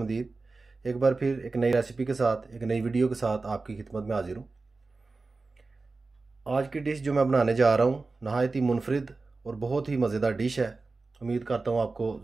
एक बार फिर एक नई रेसिपी के साथ, एक नई वीडियो के साथ आपकी खिदमत में हाजिर हूँ। आज की डिश जो मैं बनाने जा रहा हूँ नहायत ही मुनफरिद और बहुत ही मज़ेदार डिश है। उम्मीद करता हूँ आपको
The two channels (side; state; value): left; quieter; 3.7 dB